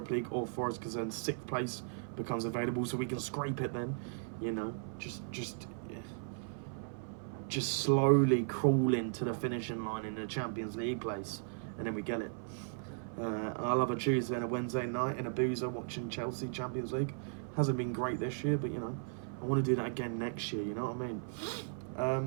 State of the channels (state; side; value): silent; left; 53 dB below the other